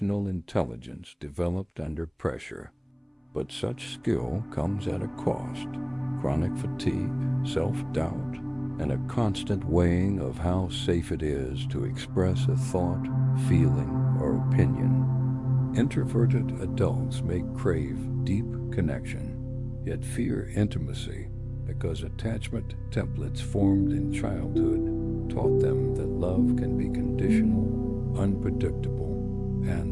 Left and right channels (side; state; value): both; identical; correlation 1.00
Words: intelligence developed under pressure. But such skill comes at a cost: chronic fatigue, self-doubt, and a constant weighing of how safe it is to express a thought, feeling, or opinion. Introverted adults may crave deep connection, yet fear intimacy because attachment templates formed in childhood taught them that love can be conditional, unpredictable,